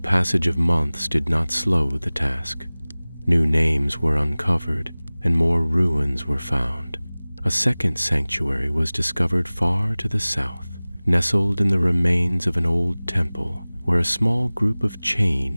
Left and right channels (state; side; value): inverted; both; correlation -0.99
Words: of months did not slow the task. New names were uncovered, and more ruins were found. A second sanctuary was discovered far to the south, nestled in the remains of an old temple, where a small group of